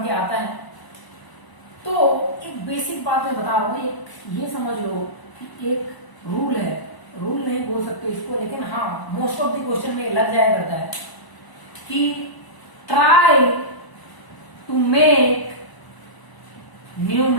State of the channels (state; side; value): late; right; 1.0 ms